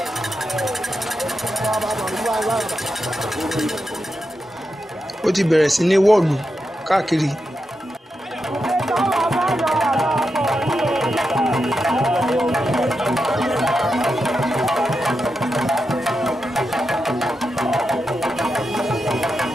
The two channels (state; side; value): normal; both; correlation 0.87